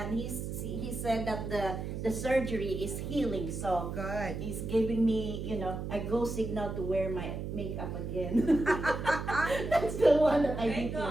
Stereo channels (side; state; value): right; noise; hum, 5 dB below the sound